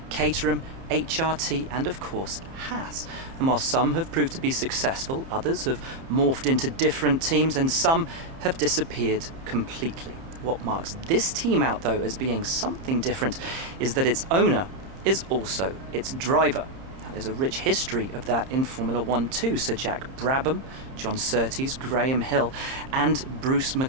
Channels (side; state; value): left; late; 30 ms